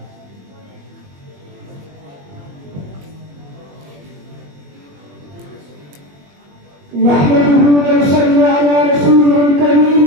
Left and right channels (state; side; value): late; left; 21 ms